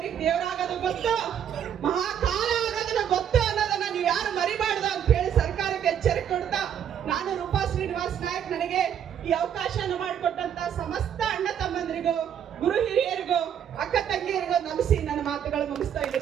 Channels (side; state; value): left; quieter; 9.0 dB